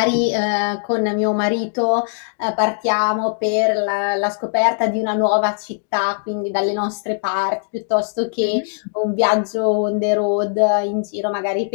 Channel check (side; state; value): right; silent; digital silence